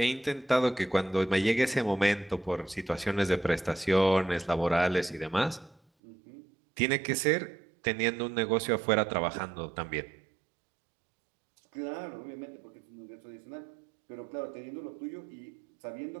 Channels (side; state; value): left; drops out; at 5.8 s